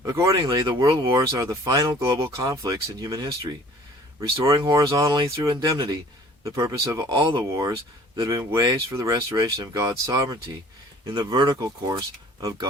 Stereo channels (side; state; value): both; normal; correlation 0.51